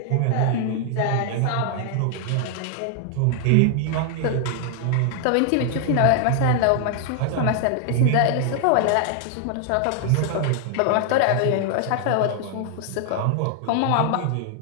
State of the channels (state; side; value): different; both; correlation 0.00